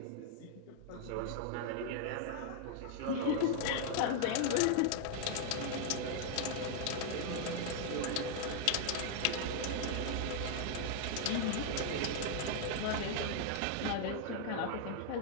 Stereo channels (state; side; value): different; both; correlation 0.00